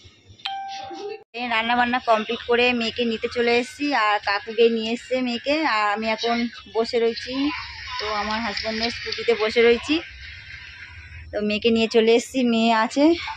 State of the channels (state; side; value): identical; both; correlation 1.00